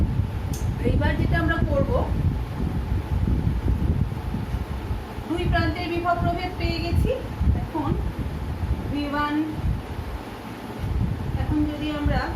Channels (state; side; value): identical; both; correlation 1.00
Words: এইবার যেটা আমরা করব, দুই প্রান্তের বিভব প্রভেদ পেয়ে গেছি। এখন V1, এখন যদি আমরা